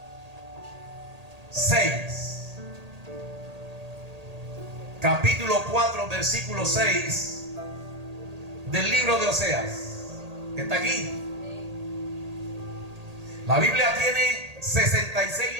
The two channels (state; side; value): late; left; 1.8 ms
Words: 6. Capítulo 4, versículo 6 del libro de Oseas. ¿Está aquí? La Biblia tiene 66